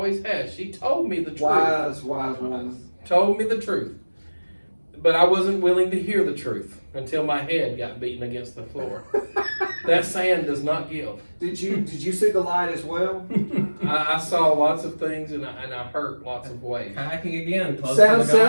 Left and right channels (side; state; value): both; inverted; correlation -1.00